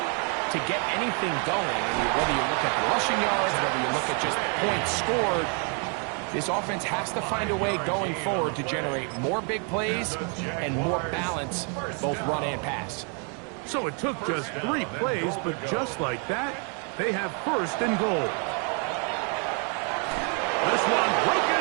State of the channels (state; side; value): quieter; left; 38.6 dB